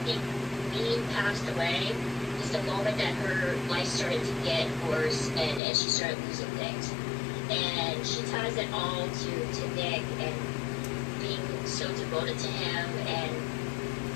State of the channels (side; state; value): right; drops out; at 5.6 s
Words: think Vegan passed away is the moment that her life started to get worse and she started losing things. And she ties it all to Nick and being so devoted to him and